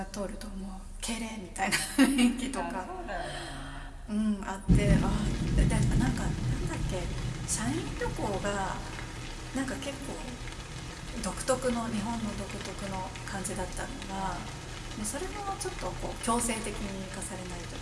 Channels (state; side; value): identical; both; correlation 1.00